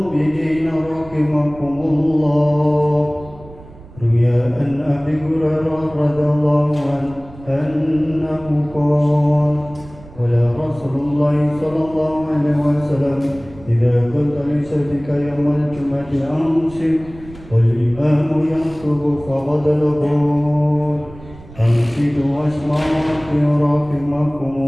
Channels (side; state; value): right; noise; rumble, 19 dB below the sound